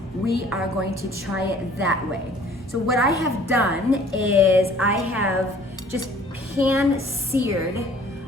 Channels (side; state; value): both; normal; correlation 0.54